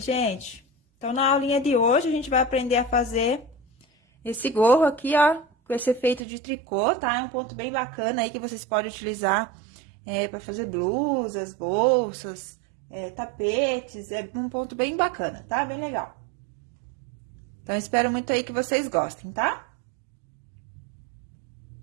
gente. Então, na aulinha de hoje, a gente vai aprender a fazer esse gorro aqui, ó, com esse efeito de tricô, tá? É um ponto bem bacana aí que vocês podem utilizar para fazer blusas, bolsas, tapetes. É um ponto bem bacana, tá? Bem legal. Então, espero muito aí que vocês gostem, tá?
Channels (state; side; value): drops out; left; at 6.2 s